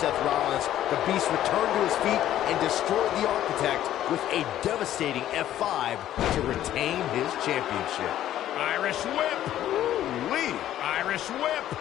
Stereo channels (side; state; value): right; quieter; 12.3 dB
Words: Rollins, the Beast returned to his feet and destroyed the Architect with a devastating F5 to retain his championship. Irish whip! Ooh-wee! Irish whip!